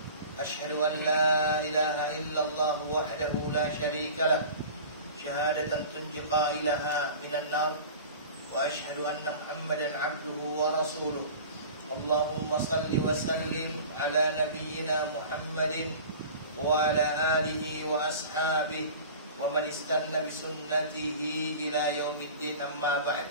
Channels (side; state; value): both; inverted; correlation -0.39